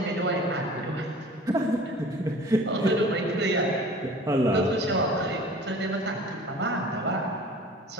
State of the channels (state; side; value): normal; both; correlation 0.44